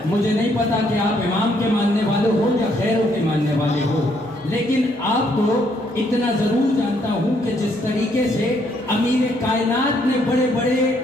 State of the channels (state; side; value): normal; both; correlation 0.70